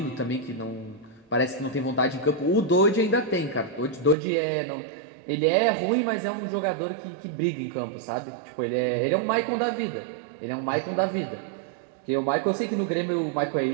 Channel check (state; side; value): drops out; left; at 4.2 s